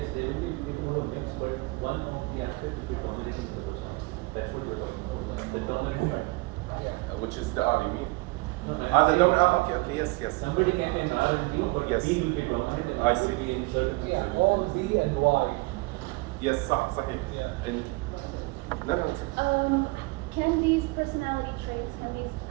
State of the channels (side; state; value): left; quieter; 25.0 dB